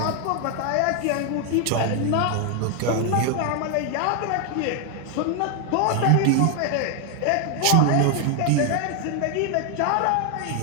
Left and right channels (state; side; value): different; both; correlation 0.01